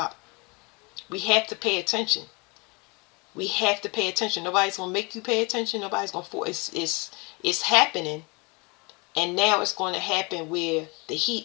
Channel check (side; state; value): right; quieter; 28.8 dB